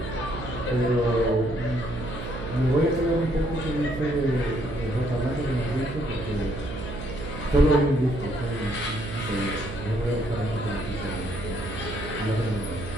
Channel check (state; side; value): noise; right; hum, 8 dB below the sound